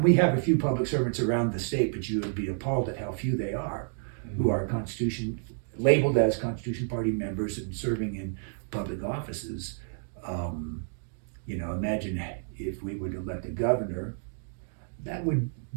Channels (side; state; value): left; silent; digital silence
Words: we have a few public servants around the state, but you would be appalled at how few they are who are labeled as Constitution Party members and serving in public offices. Imagine if we would elect a governor, that would